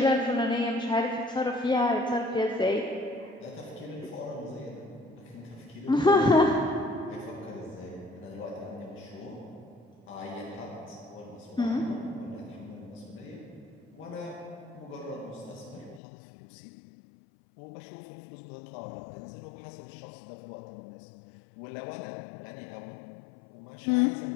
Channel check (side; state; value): right; drops out; at 16.0 s